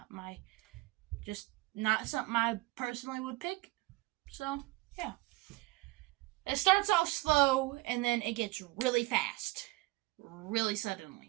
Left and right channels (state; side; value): quieter; left; 21.0 dB